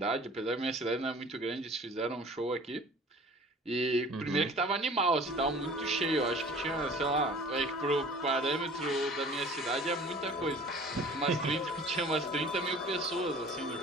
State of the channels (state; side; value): normal; both; correlation 0.47